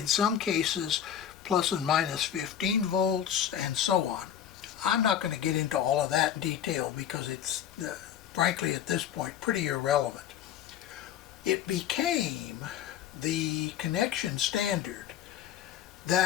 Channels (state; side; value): quieter; right; 9.8 dB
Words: some cases plus and minus 15 volts, and so on. I'm not going to get into all of that in detail because it's, frankly, at this point, pretty irrelevant. It became the connection standard